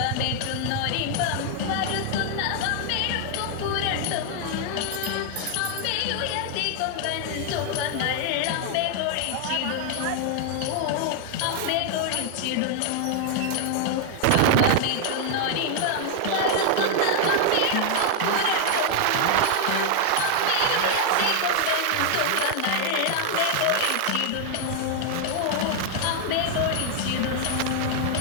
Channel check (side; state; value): both; different; correlation 0.00